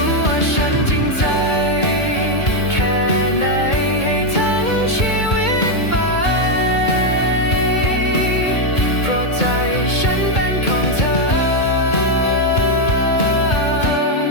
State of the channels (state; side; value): late; right; 2.2 ms